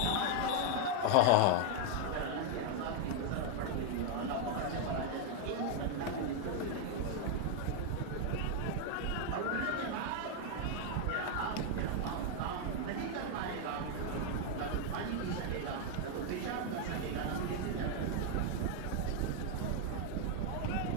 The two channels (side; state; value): both; different; correlation 0.00